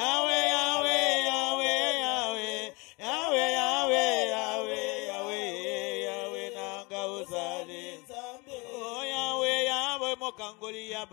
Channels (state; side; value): quieter; right; 27.6 dB